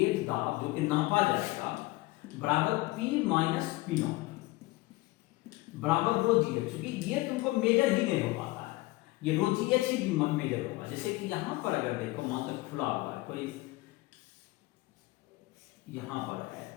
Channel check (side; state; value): right; quieter; 20.7 dB